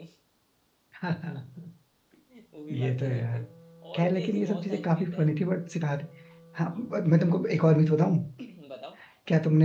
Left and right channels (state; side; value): identical; both; correlation 1.00